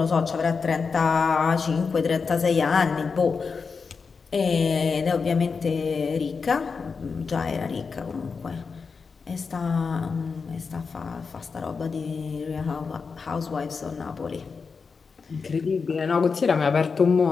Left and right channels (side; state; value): right; quieter; 5.1 dB